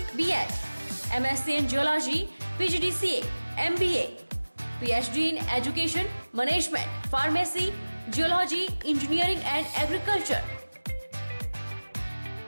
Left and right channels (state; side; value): inverted; both; correlation -1.00